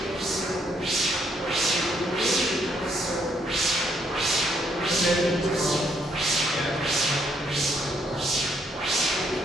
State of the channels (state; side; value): normal; both; correlation 0.71